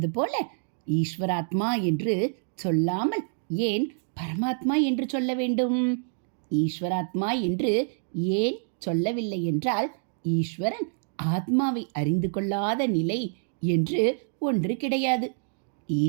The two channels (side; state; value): left; silent; digital silence